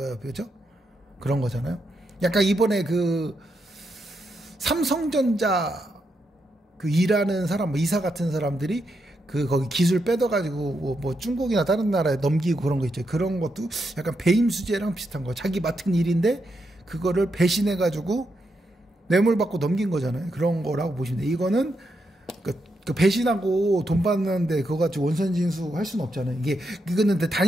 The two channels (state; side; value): normal; both; correlation 0.83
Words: 그렇죠? 그런 거잖아요. 약간 이번에 그 삼성전자 그 일하는 사람, 뭐 이사 같은 사람들이 그 거기 기술 뺏어가지고 뭐 중국이나 다른 나라에 넘기고 그런 거 있죠. 그런 것도 약간 배임 수재랑 비슷한 거. 자기 맡은 일인데 그거를 배신해가지고 뇌물 받고 넘긴 거잖아요. 그런 거라고 보시면 돼요. 이거는 그 배신하고 돈 받는데 그거 가지고 원천징수 할 수는 없잖아요. 이거는